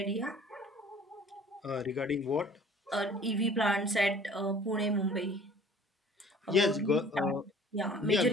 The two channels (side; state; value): both; normal; correlation 0.50